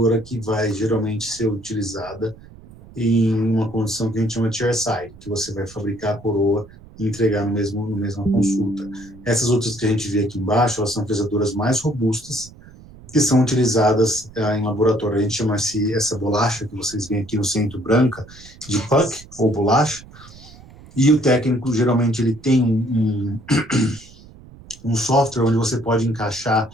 que vai geralmente ser utilizada em uma condição que a gente chama de chairside, que você vai fabricar a coroa e entregar no mesma consulta. Essas outras que a gente vê aqui embaixo, elas são fresadoras mais robustas, que são utilizadas em laboratório. A gente chama essa bolacha que vocês veem aqui no centro, branca, de puck, ou bolacha, e o técnico, geralmente, ele tem um software onde você pode encaixar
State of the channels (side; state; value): right; noise; rumble, 21 dB below the sound